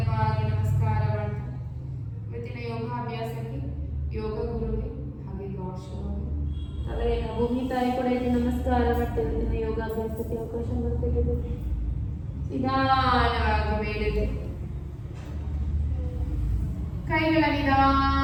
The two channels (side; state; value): both; identical; correlation 1.00